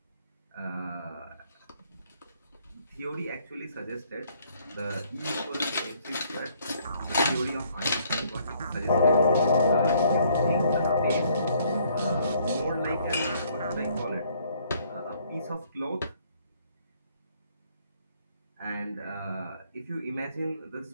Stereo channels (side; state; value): both; inverted; correlation -0.64